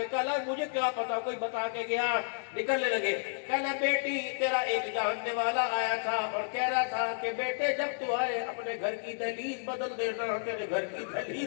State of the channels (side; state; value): right; silent; digital silence